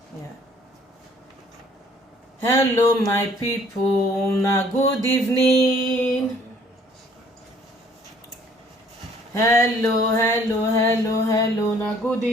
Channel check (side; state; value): both; normal; correlation 0.59